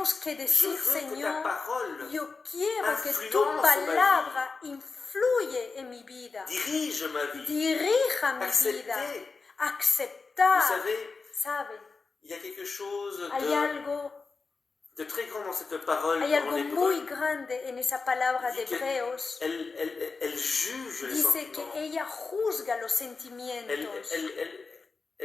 que je decir, veux que ta Señor, parole yo quiero que tu influence ma vie. palabra influye en mi vida, dirige ma vie. dirija mi vida, Accepter. Vous aceptar. savez, ¿Sabe? il y a quelque chose Hay algo, de très grand dans cette parole hay en algo hébreu. muy grande en esa palabra de Dit que Hebreos. Elle juge les Dice sentiments. que ella juzga los sentimientos,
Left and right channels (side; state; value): right; quieter; 4.3 dB